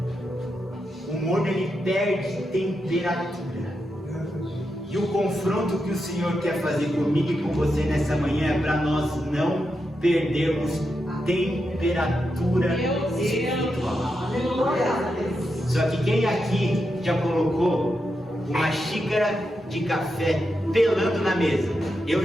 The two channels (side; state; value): both; normal; correlation 0.86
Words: O morno ele perde temperatura. E o confronto que o Senhor quer fazer comigo e com você nessa manhã é para nós não perdermos temperatura espiritual. Só que quem aqui já colocou uma xícara de café pelando na mesa? Eu